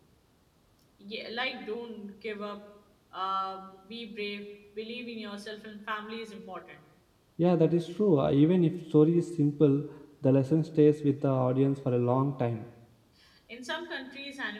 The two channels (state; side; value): identical; both; correlation 1.00